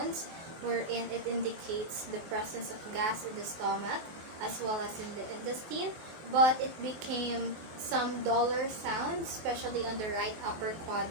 wherein it indicates the presence of gas in the stomach as well as in the intestine, but it became some duller sounds, especially on the right upper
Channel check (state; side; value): late; left; 24 ms